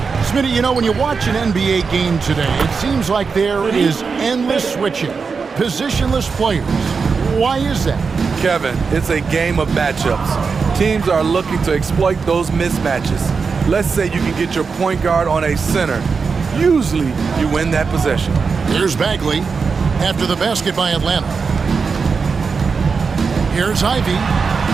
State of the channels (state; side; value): quieter; left; 5.2 dB